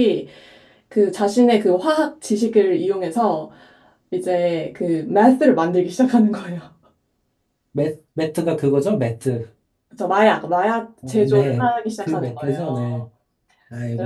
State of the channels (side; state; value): both; identical; correlation 1.00